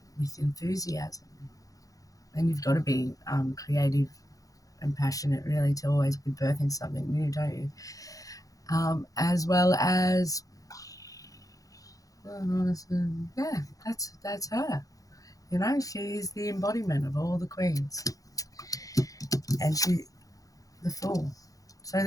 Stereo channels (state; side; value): late; right; 0.17 ms